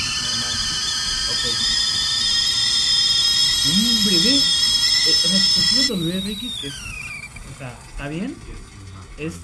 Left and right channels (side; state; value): both; identical; correlation 1.00